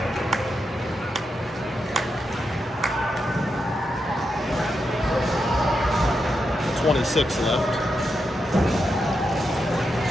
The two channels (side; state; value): both; normal; correlation 0.85